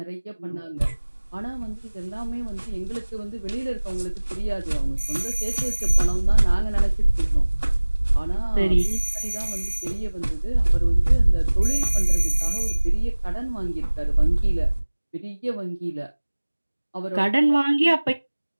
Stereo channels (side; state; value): both; inverted; correlation -1.00